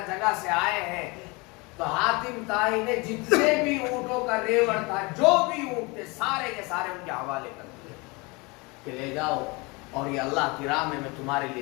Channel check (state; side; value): quieter; right; 26.7 dB